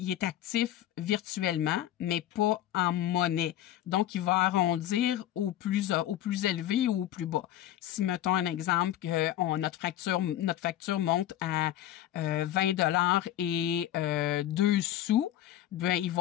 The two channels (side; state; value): right; quieter; 12.6 dB